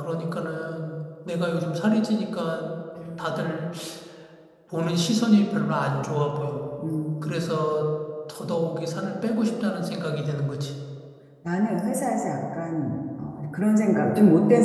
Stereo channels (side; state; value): both; identical; correlation 1.00